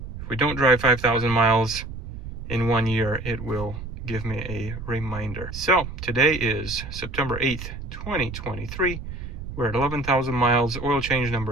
If we don't drive 5,000 miles in 1 year, it will give me a reminder. So today is September 8th, 2023. We're at 11,000 miles. Oil change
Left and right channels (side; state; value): right; noise; rumble, 9 dB below the sound